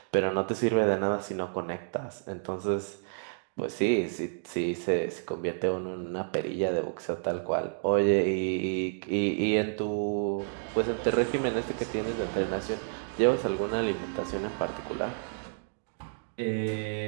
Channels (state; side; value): silent; left; digital silence